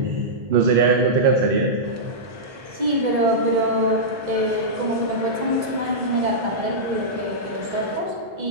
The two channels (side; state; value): left; late; 2.0 ms